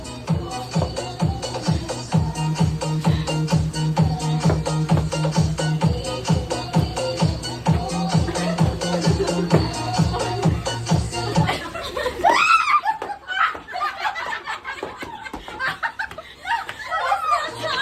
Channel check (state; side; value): identical; both; correlation 1.00